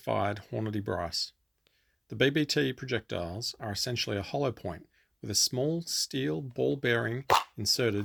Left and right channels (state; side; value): identical; both; correlation 1.00